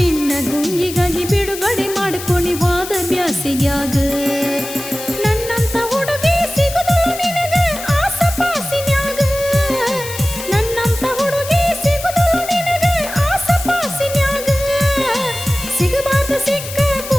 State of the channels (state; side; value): noise; left; hiss, 10 dB below the sound